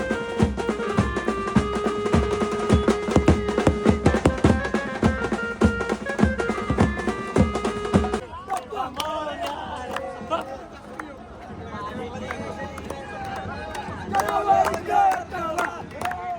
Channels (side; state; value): both; identical; correlation 1.00